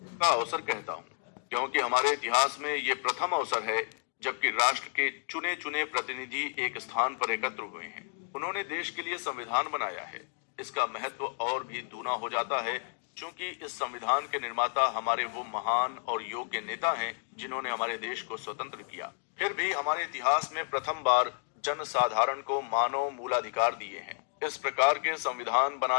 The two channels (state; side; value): silent; right; digital silence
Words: का अवसर कहता हूँ, क्योंकि हमारे इतिहास में ये प्रथम अवसर है जबकि राष्ट्र के चुने चुने प्रतिनिधि एक स्थान पर एकत्र हुए हैं। उन्होंने देश के लिए संविधान बनाया है। इसका महत्व और भी दूना हो जाता है क्योंकि इस संविधान के निर्माता हमारे वो महान और योग्य नेता हैं जिन्होंने हमारे देश को स्वतंत्र किया। फिर भी हमारे इतिहास में प्रथम बार जन साधारण को मानव मूलाधिकार दिए हैं। इस प्रकार के संविधान